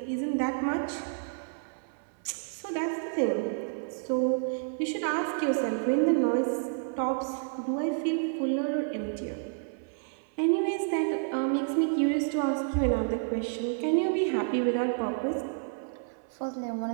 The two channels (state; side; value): silent; left; 58 dB below the other